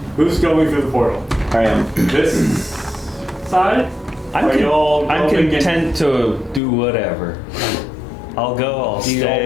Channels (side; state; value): right; drops out; at 6.6 s